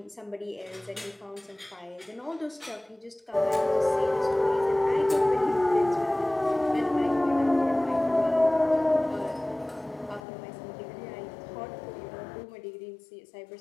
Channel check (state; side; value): drops out; right; at 10.2 s